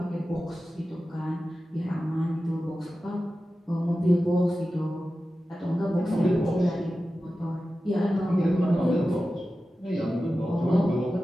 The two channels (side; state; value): both; normal; correlation 0.94